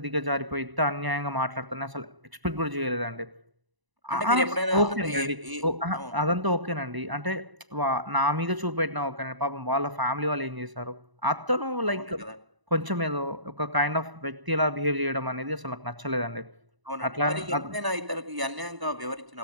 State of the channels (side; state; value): left; late; 1.0 ms